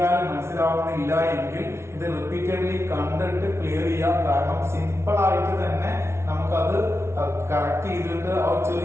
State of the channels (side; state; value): left; late; 0.13 ms